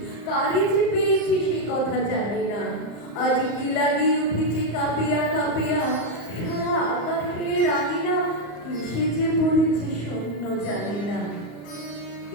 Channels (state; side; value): late; right; 35 ms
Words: কারে যে পেয়েছি সে কথা জানি না। আজ কি লাগিয়ে উঠেছে কাঁপিয়া কাঁপিয়া, সারা আকাশের আঙিনা কিসে যে পড়েছে শূন্য জানি না।